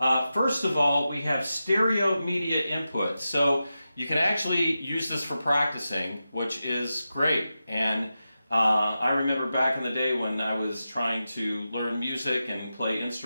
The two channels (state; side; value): inverted; both; correlation -0.91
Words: First of all, we have stereo media input. So you can actually use this for practicing, which is great. And I remember back in the day when I was trying to learn music and play